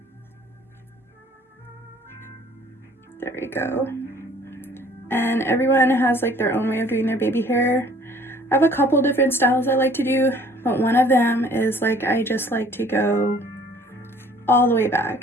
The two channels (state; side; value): normal; both; correlation 0.54